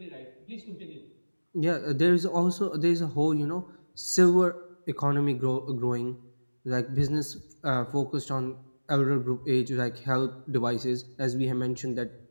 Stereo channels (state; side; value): inverted; both; correlation -1.00